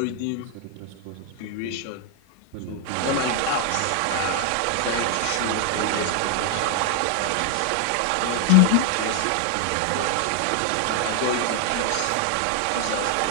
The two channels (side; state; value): both; different; correlation 0.01